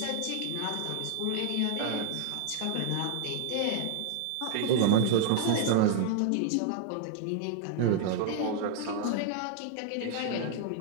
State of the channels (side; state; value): both; different; correlation 0.00